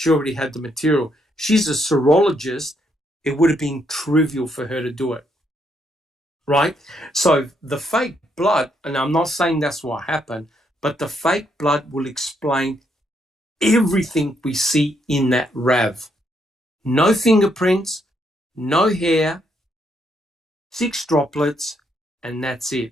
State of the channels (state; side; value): normal; both; correlation 0.75